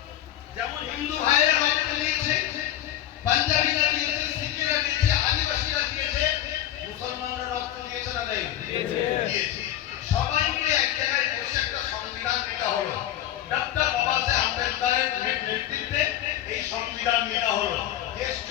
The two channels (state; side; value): quieter; right; 12.3 dB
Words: যেমন হিন্দু ভাইয়েরা রক্ত দিয়েছে, পাঞ্জাবিরা দিয়েছে, শিখেরা দিয়েছে, আদিবাসীরা দিয়েছে, মুসলমানরা রক্ত দিয়েছে না দেয়? দিয়েছে। সবাই মিলে এক জায়গায় বসে একটা সংবিধান নেওয়া হলো। ডক্টর বাবা সাহেব আম্বেদকরের নেতৃত্বে এই সংবিধান নেওয়া হলো। দেশ